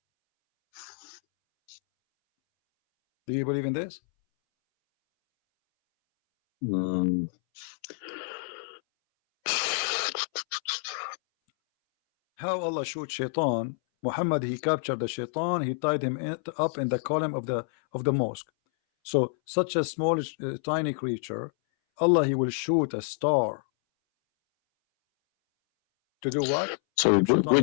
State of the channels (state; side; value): silent; right; 59 dB below the other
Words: Do you believe in this? How Allah showed shaitan, Muhammad, he captured the shaitan, he tied him up in the column of the mosque. So such a small tiny creature, Allah, he will shoot a star to do what? So